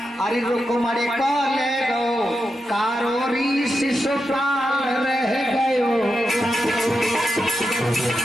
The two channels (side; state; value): both; normal; correlation 0.87